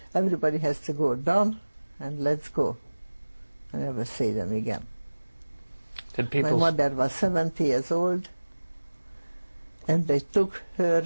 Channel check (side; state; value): both; inverted; correlation -1.00